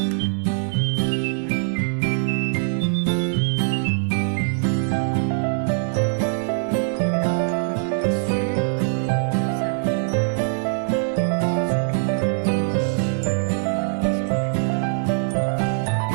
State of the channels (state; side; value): silent; left; 64 dB below the other